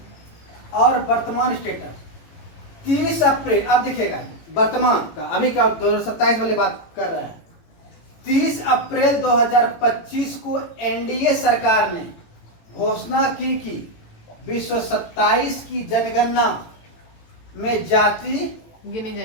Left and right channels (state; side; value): late; right; 18 ms